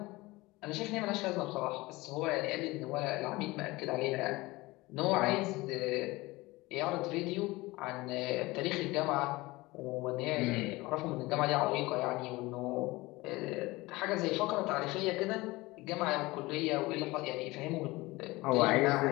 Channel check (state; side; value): quieter; right; 21.1 dB